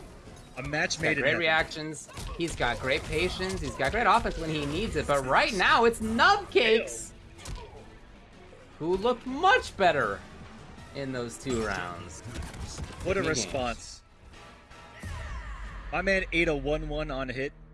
A match made in great heaven. reactions. He's got great patience. He's got great offense when he needs it. But right now, it's Nubcakes, who looked much better in those 2 rounds. What a response. My man ate a 1-1 on hit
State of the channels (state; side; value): identical; both; correlation 1.00